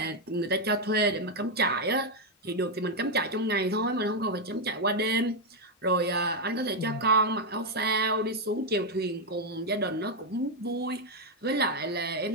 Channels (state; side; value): normal; both; correlation 0.02